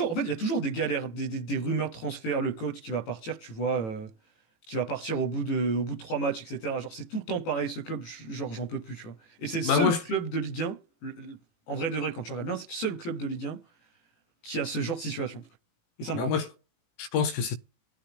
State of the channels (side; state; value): right; late; 18 ms